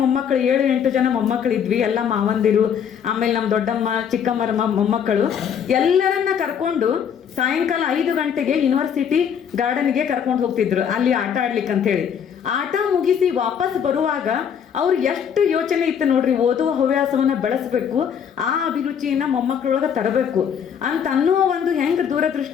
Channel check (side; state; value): right; quieter; 7.9 dB